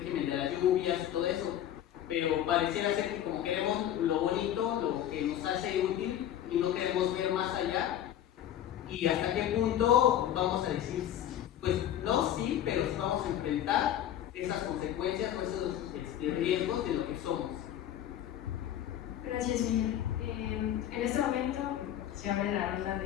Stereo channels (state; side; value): quieter; right; 11.3 dB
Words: de las lluvias y todo eso, pero pareciera ser que como queremos lo bonito, lo que nos hace útil, y no queremos ver más allá, y hasta qué punto vamos a decir, pues no, sí, pero sí vamos a enfrentar esas consecuencias o esos riesgos de lo que somos. Gracias, Miguel. En este momento se abre la ronda